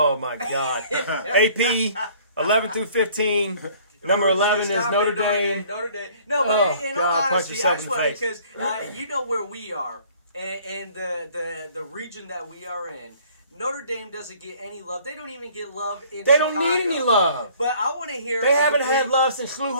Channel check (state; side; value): inverted; both; correlation -0.55